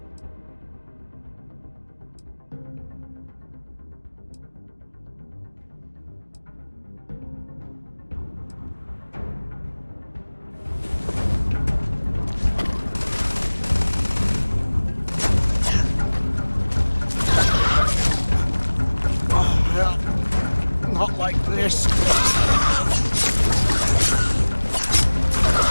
Not like this.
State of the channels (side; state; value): both; inverted; correlation -1.00